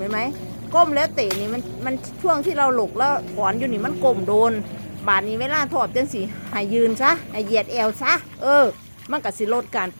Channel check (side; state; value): both; inverted; correlation -1.00